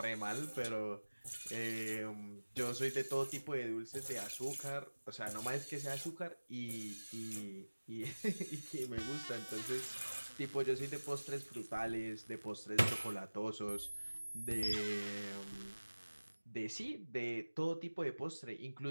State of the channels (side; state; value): both; inverted; correlation -1.00